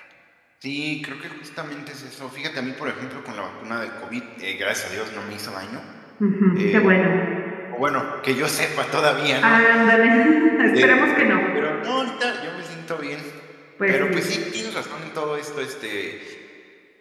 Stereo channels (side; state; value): both; identical; correlation 1.00